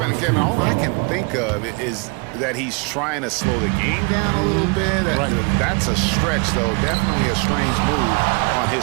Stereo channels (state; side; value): quieter; left; 32.7 dB